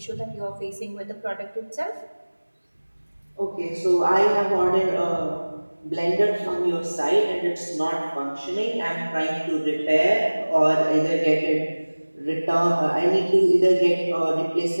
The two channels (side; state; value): both; inverted; correlation -1.00